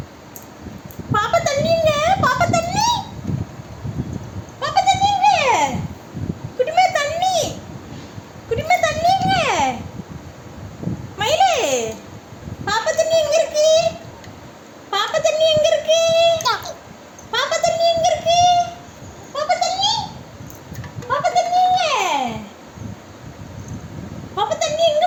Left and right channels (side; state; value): both; identical; correlation 1.00